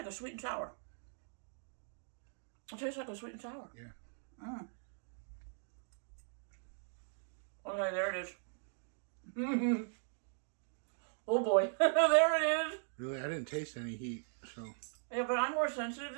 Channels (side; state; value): left; silent; digital silence